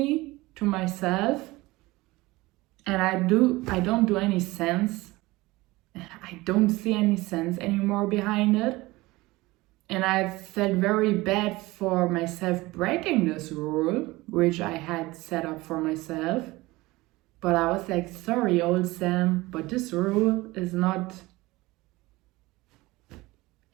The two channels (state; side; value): quieter; left; 20.5 dB